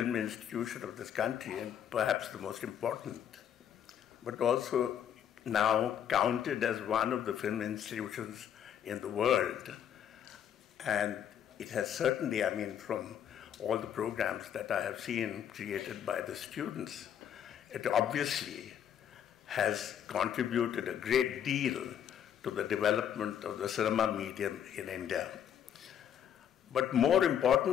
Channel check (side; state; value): right; quieter; 9.3 dB